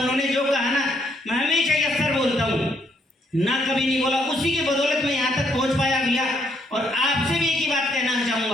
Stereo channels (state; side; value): normal; both; correlation 0.72